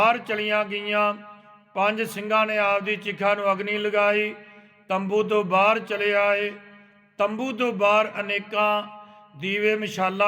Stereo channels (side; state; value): both; identical; correlation 1.00